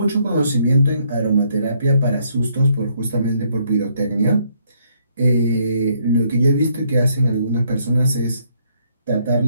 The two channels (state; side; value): inverted; both; correlation -0.70